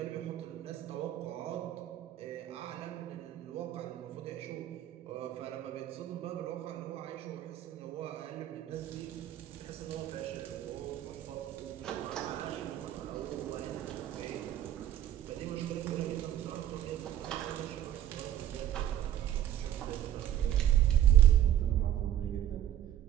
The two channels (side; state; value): left; quieter; 11.8 dB